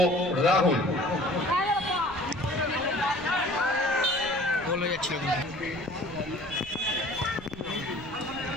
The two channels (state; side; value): noise; right; rumble, 19 dB below the sound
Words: রাহুল গোল হয়ে যাচ্ছিল কিন্তু।